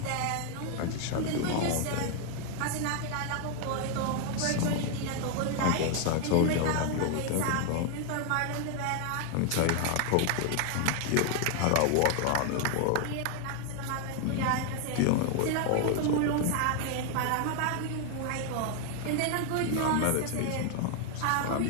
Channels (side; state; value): both; different; correlation 0.01